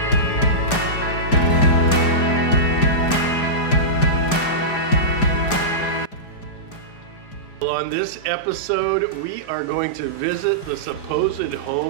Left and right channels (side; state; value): right; late; 4.9 ms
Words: On this episode, we are going to visit the supposed